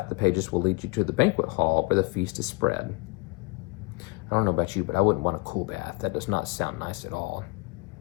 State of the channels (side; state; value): right; quieter; 27.0 dB